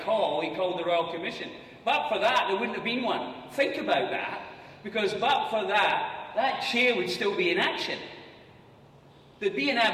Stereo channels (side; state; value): both; identical; correlation 1.00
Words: call, he called the Royal Commission. But for that, there wouldn't have been one. Think about that, because but for that, that chair would still be in action. There'd be an